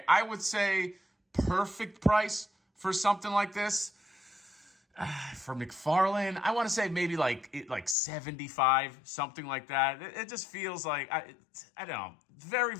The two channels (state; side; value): drops out; right; at 8.0 s